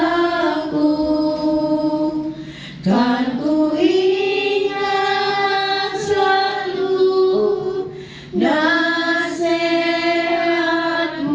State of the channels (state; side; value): identical; both; correlation 1.00